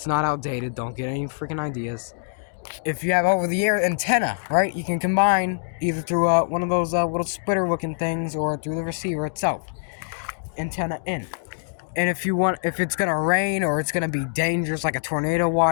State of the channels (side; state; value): right; silent; digital silence